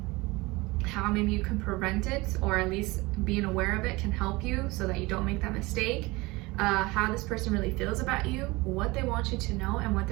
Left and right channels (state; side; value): quieter; left; 22.7 dB